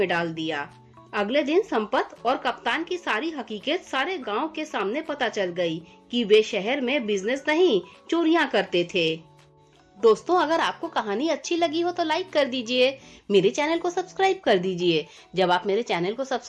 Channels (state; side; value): identical; both; correlation 1.00